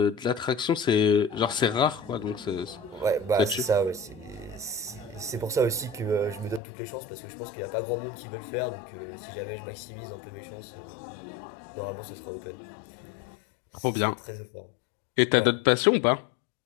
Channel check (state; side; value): drops out; right; at 6.6 s